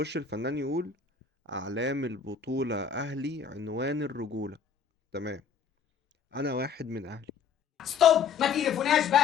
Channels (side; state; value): right; quieter; 6.4 dB